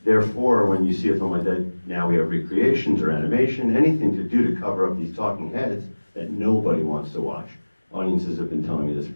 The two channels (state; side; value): inverted; both; correlation -1.00